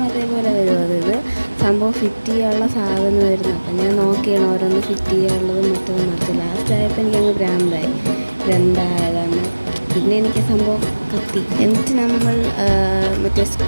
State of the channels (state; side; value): inverted; both; correlation -1.00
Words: അതേപോലെ വരും. ഇത് സംഭവം ഫിറ്റ് ചെയ്യാനുള്ള സാധനം വരുന്നു. അപ്പം ഞാൻ നോക്കിയാണ് ഓരോന്ന് ഫിറ്റ് ചെയ്യാനുള്ളതും മറ്റൊന്നും മറിച്ച്. ലാസ്റ്റ് ആയപ്പോൾ എനിക്കങ്ങ് ഭ്രാന്തായി, ഇതെന്തായതാണ്. പിന്നെ എനിക്ക് സംഭവം കത്തി. എന്നിട്ട് നമ്മൾ മറ്റേ